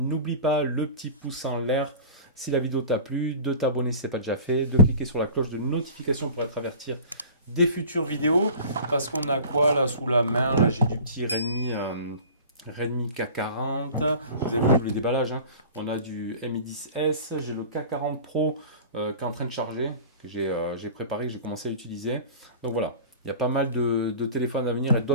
pas le petit pouce en l'air si la vidéo t'a plu, de t'abonner si ce n'est pas déjà fait, de cliquer sur la cloche de notification pour être averti des futures vidéos. Parce qu'on a quoi là sous la main? Là j'ai du petit Redmi K40. Vous avez vu tous les déballages, hein. On a du Mi 10S, j'ai le K40 Pro qui est en train de charger, que j'ai préparé, que j'ai commencé à utiliser. Donc voilà, il y a pas mal de téléphones à venir et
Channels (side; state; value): both; inverted; correlation -0.40